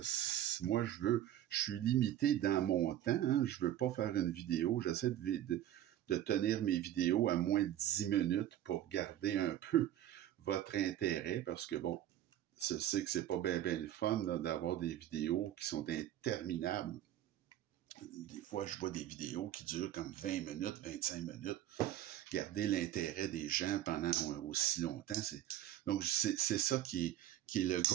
moi je suis limité dans mon temps, hein, je veux pas faire une vidéo, j'essaie de tenir mes vidéos à moins de 10 minutes pour garder un peu votre intérêt, parce que bon, je sais que c'est pas bien le fun d'avoir des vidéos qui sont interminables. Des fois, je vois des vidéos qui durent comme 20 minutes, 25 minutes. Garder l'intérêt des gens pendant aussi longtemps, donc c'est ça qui est le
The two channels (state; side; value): quieter; left; 12.3 dB